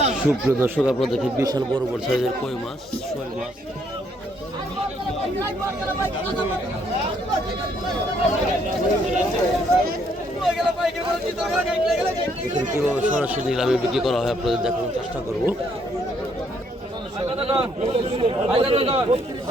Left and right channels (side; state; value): both; normal; correlation 0.70